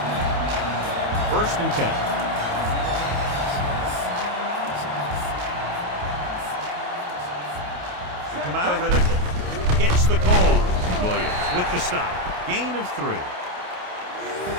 First and 10. They come out of the nickel. Gets the call. Williams with the stop. Gain of 3.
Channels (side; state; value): left; late; 28 ms